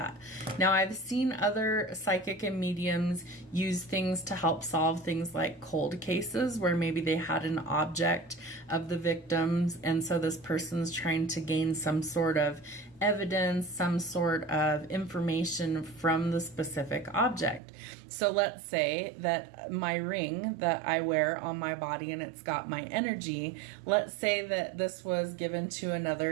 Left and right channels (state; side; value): drops out; left; at 17.6 s